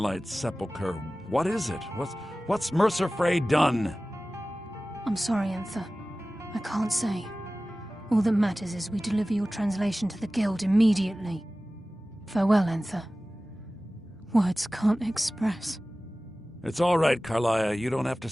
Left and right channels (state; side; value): normal; both; correlation 0.97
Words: Sepulchre. What is it? What's Mercer Frey done? I'm sorry, Enthir. I can't say. All that matters is we deliver your translation to the Guild immediately. Farewell, Enthir. Words can't express. It's all right, Carlia. You don't have to